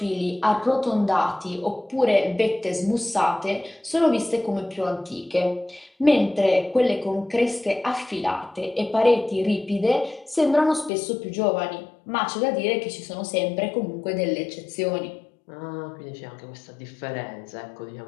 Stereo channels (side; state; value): right; drops out; at 10.9 s